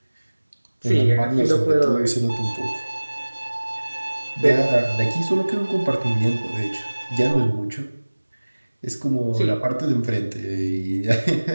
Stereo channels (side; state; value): both; inverted; correlation -1.00